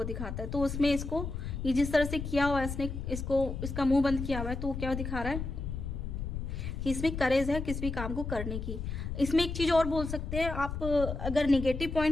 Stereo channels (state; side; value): noise; left; rumble, 5 dB below the sound